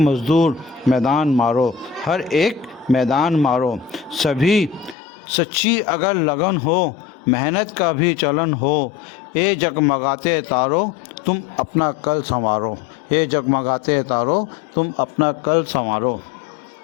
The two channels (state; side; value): drops out; right; at 5.0 s